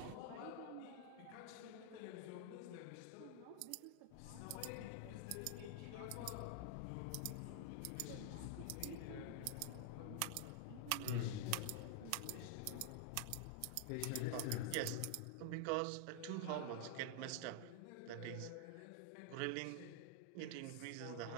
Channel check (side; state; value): both; different; correlation 0.00